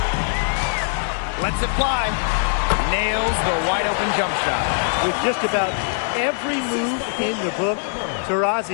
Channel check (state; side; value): silent; right; 64 dB below the other